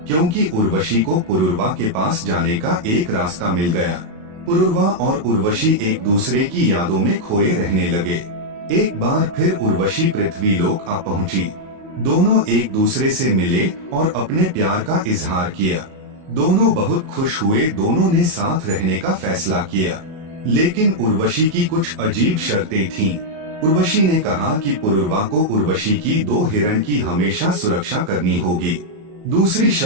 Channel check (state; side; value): late; left; 37 ms